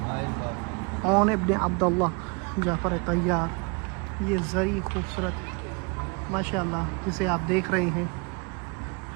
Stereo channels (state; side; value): quieter; left; 30.4 dB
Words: عون ابن عبداللہ جعفر طیار، یہ زری خوبصورت ماشاءاللہ جسے آپ دیکھ رہے ہیں،